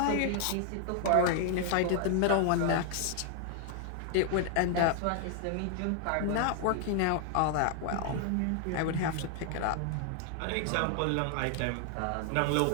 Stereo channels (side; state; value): both; different; correlation 0.00